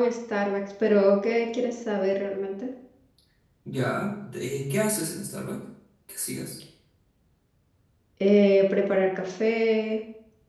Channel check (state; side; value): identical; both; correlation 1.00